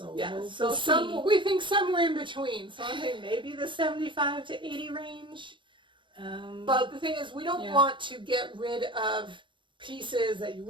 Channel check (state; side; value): late; left; 0.23 ms